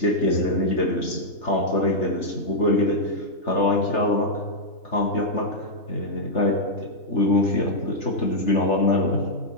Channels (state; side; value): late; right; 3.4 ms